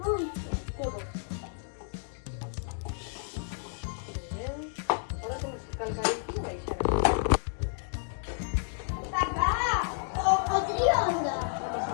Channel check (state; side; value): silent; right; digital silence